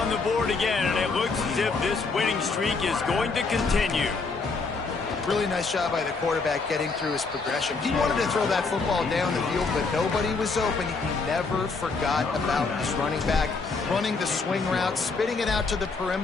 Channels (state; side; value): quieter; right; 4.3 dB